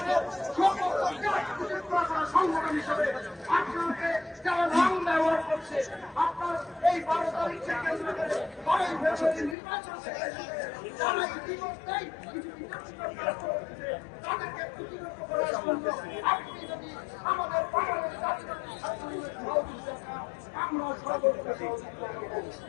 সংগঠন হিসেবে আপনাকে যারা নাম ব্যবহার করছে আপনার এই 12 তারিখকে কেন্দ্র করে 12 ফেব্রুয়ারি নির্বাচন যারা ইতিমধ্যেই কিছু তাদেরকে প্রতিরোধ করার জন্য আপনি যদি আমাদের বাংলাদেশ আমরা সর্বোচ্চ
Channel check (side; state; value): right; drops out; at 9.6 s